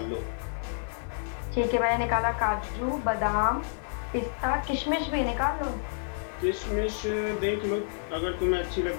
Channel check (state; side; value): silent; right; 58 dB below the other